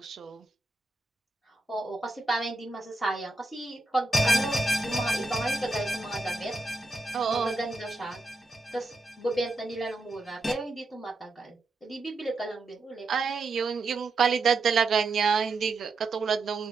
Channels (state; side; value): quieter; left; 3.1 dB